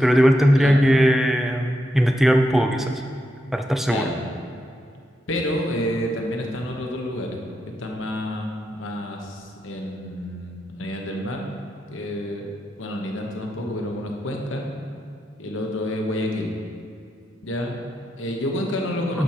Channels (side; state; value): both; normal; correlation 0.84